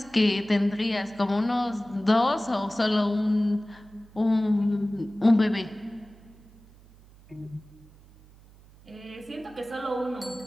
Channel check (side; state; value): right; noise; hum, 25 dB below the sound